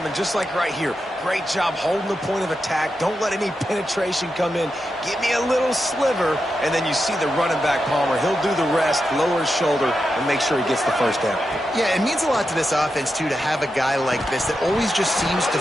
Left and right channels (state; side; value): normal; both; correlation 0.88